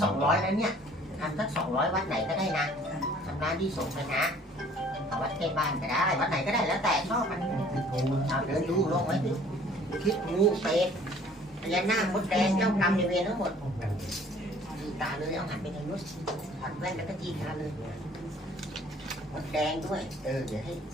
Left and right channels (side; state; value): both; normal; correlation 0.54